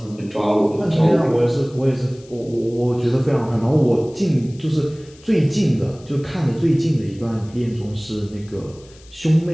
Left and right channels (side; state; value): left; noise; hiss, 26 dB below the sound